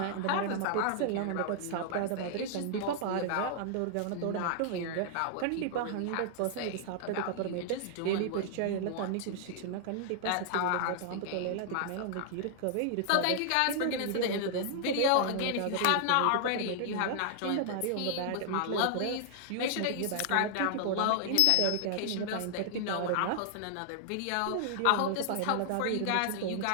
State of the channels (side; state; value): both; different; correlation -0.01